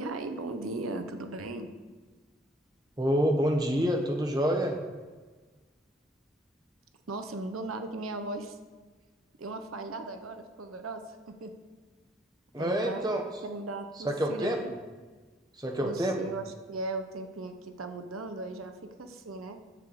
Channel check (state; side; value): normal; both; correlation 0.60